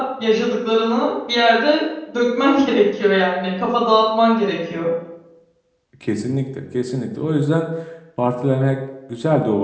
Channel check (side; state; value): both; identical; correlation 1.00